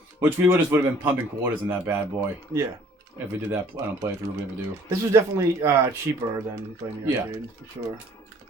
Which we would have been pumping quarters in that bad boy. Yeah. If we did that on a playthrough, we ever do. This was definitely cheaper than playing the arcade, for sure.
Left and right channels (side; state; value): both; normal; correlation 0.56